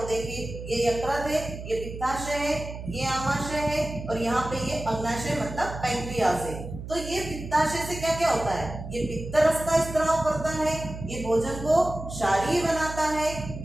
देखिए ये यकृत है, ये पित्ताशय है, ये आमाशय है और यहाँ पे ये अग्नाशय मतलब पैंक्रियास है। तो ये पित्ताशय से क्या क्या होता है, ये पित्त रस का स्त्राव करता है, ये भोजन को क्षारीय बनाता है,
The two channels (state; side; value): noise; right; hum, 10 dB below the sound